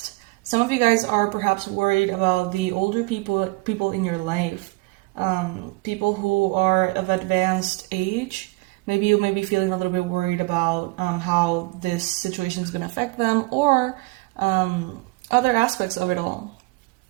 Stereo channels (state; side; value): quieter; left; 24.2 dB